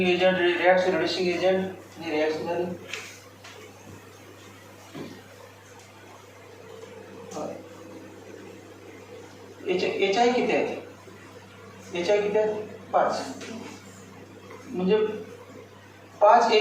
agent reaction reducing agent ही रिॲक्शन झाली. HI किती आहे. HI किती आहे 5 म्हणजे 5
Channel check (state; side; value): identical; both; correlation 1.00